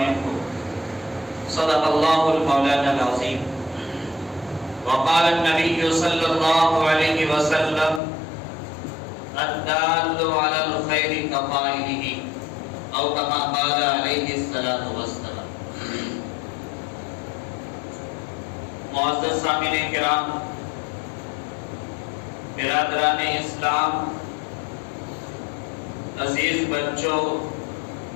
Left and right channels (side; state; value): right; drops out; at 8.0 s